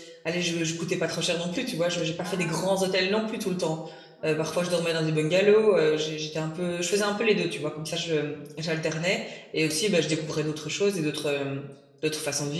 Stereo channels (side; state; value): both; identical; correlation 1.00